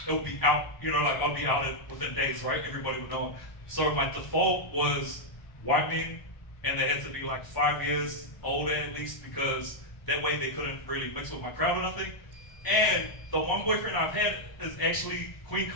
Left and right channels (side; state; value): right; late; 1.0 ms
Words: it would be out, like I'd be out within days, right? Everybody would know. So my default was white men, and they had to be like 5 years older at least, because that way they couldn't really mix with my crowd or nothing. And the one boyfriend I've had is actually Queen